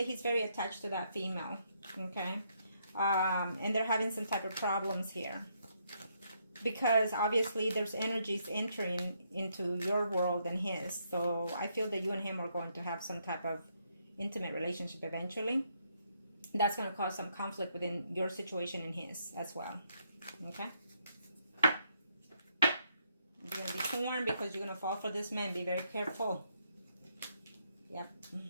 he's very attached to that female. Okay? And they're having some type of problems here. Because obviously there's energies entering into your world and his. So I feel that you and him are going to have some type of intimate relationship eventually. That's going to cause some conflict within your situation and his as well. Okay? You're going to be torn because you're going to fall for this man. Be very careful. Yep.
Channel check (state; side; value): inverted; both; correlation -0.74